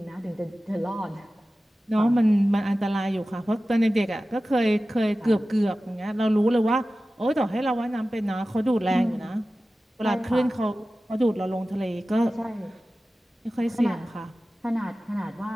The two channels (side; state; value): both; normal; correlation 0.95